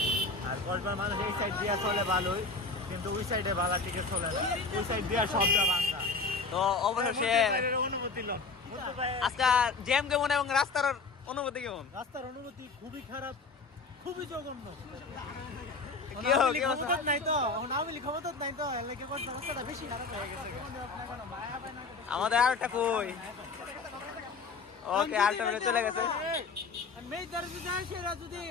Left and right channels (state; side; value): quieter; right; 4.2 dB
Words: আর কক্সবাজার মানুষ এই সাইড দিয়ে চলে ভালোই, কিন্তু ওই সাইডে ভালো টিকে চলে না। ওই সাইড দিয়ে সবটা বাঙ্গা। তো অবশেষে অনুমতি লন আজকে জ্যাম কেমন এবং রাস্তার অনুভূতি কেমন? রাস্তার অনুভূতি খুবই খারাপ, খুবই জঘন্য। আমাদের আর একটা কই ওকে আরেকটা মিনিট চলে গেছে।